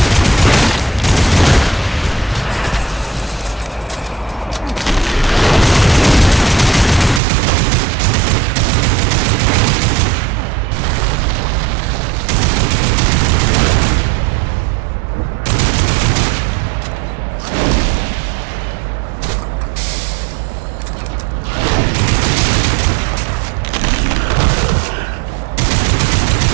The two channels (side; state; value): left; drops out; at 7.2 s